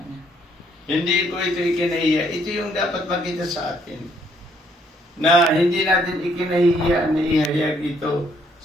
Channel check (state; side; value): normal; both; correlation 0.68